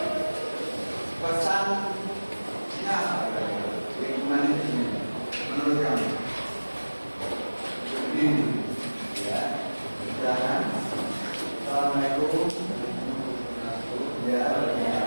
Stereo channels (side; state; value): both; inverted; correlation -1.00